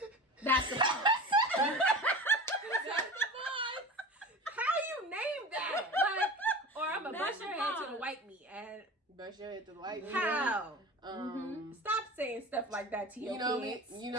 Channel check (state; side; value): normal; both; correlation 0.34